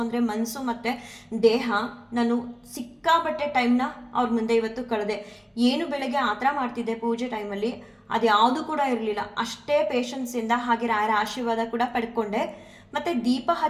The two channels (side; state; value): both; identical; correlation 1.00